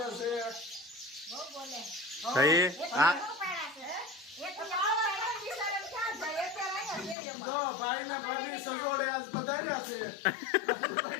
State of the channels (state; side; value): drops out; right; at 7.2 s